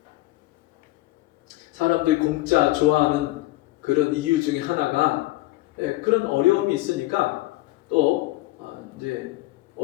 사람들이 공짜 좋아하는 그런 이유 중에 하나가 그런 어려움이 있으니까 또 이제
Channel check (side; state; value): right; quieter; 18.8 dB